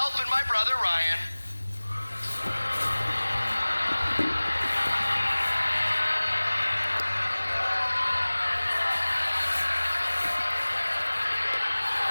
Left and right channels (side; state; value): both; inverted; correlation -1.00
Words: and my brother Ryan